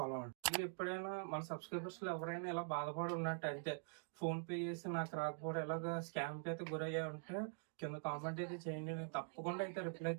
అవ్వండి. మీరు ఎప్పుడైనా మన సబ్స్క్రైబర్స్ లో ఎవరైనా ఇలా బాధపడి ఉన్నట్టు అంటే ఫోన్ పే చేసి నాకు రాకపోవడం ఎలాగా స్కామ్ అయితే గురయ్యా ఉంటే కింద కామెంట్ అయితే చేయండి, నేను తప్పకుండా అయితే రిప్లై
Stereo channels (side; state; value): left; silent; digital silence